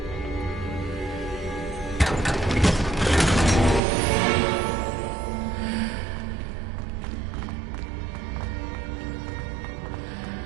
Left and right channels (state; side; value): drops out; left; at 3.8 s